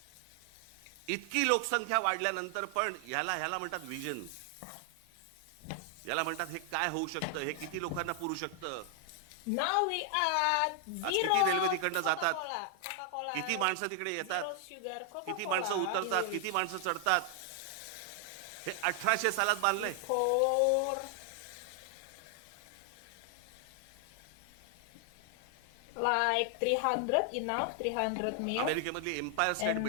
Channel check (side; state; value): both; different; correlation 0.00